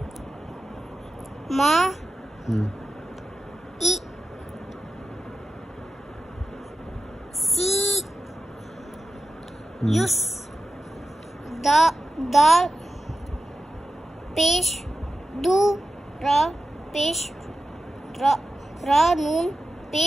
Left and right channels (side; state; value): both; normal; correlation 0.92